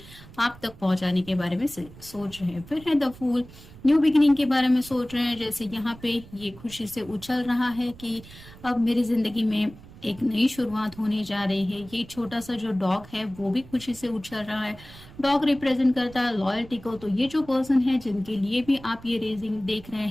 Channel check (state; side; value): noise; right; rumble, 19 dB below the sound